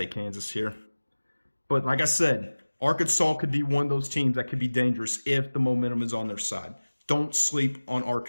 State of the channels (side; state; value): both; inverted; correlation -1.00